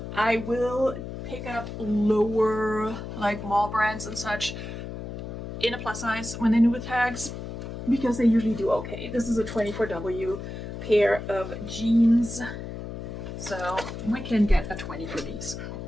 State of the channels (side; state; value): left; noise; hum, 8 dB below the sound